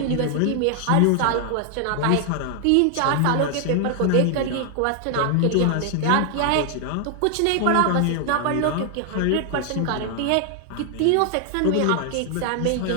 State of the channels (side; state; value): both; different; correlation 0.00